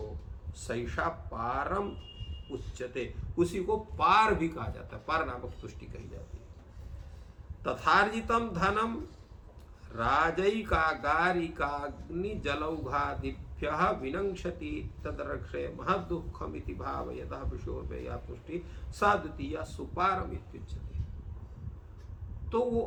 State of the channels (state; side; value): identical; both; correlation 1.00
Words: सैषा पारम उच्यते, उसी को पार भी कहा जाता है, पार नामक तुष्टि कही जाती है। तथार्जितम धनम राजैकागारिकाग्नि जलौघादिभ्यः विनंक्षति तदरक्षे महदुःखमिति भावयतः विषयोर्व्यया तुष्टि सा द्वितीया सुपारम इत्युच्यते। तो वो